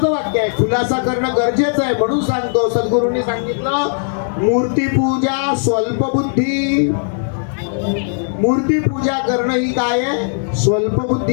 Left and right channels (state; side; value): silent; right; 68 dB below the other